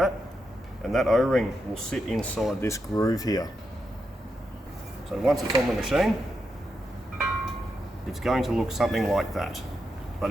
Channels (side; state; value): both; normal; correlation 0.85